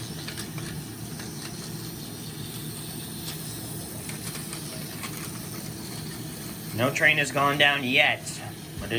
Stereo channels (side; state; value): both; identical; correlation 1.00